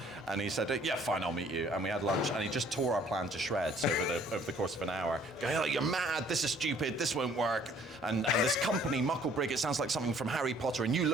And he said, "Yeah, fine, I'll meet you." And we had lunch, and he just tore our plan to shreds over the course of an hour. Going, "Oh, you're mad! This is stupid! This won't work!" And this company, Mucklebrig, it sounds like something from Harry Potter, and you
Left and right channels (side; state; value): both; normal; correlation 0.59